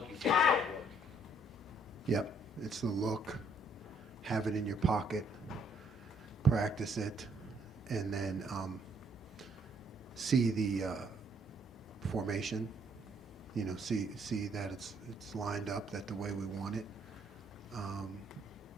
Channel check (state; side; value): normal; both; correlation 0.68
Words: you think it's going to work? Yep, it's the look, have it in your pocket, practice it, and then see the formation. You know, see that it's lined up that the way we want it.